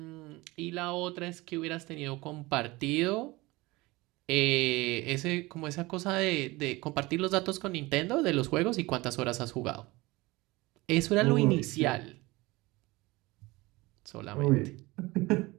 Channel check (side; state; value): left; quieter; 21.7 dB